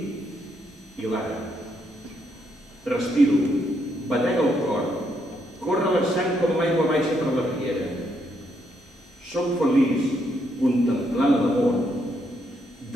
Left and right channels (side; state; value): both; normal; correlation 0.76